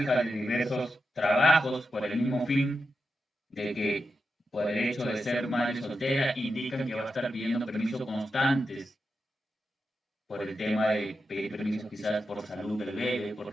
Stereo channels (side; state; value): both; normal; correlation 0.88